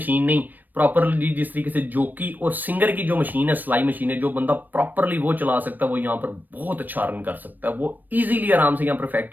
नहीं, प्रॉपरली जिस तरीके से जोकी और सिंगर की जो मशीन है, सिलाई मशीन है, जो बंदा प्रॉपरली वो चला सकता है वो यहाँ पर बहुत अच्छा अर्न कर सकता है। वो इजीली आराम से यहाँ पर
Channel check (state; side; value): late; left; 0.089 ms